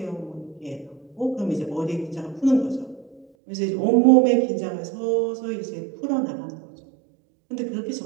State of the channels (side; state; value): left; drops out; at 3.2 s